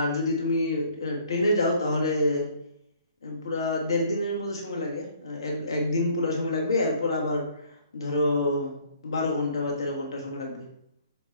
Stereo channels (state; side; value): inverted; both; correlation -0.59